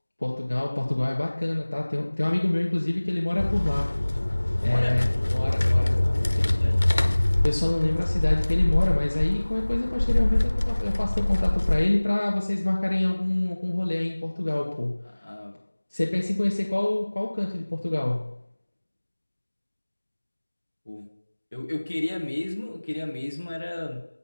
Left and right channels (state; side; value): inverted; both; correlation -1.00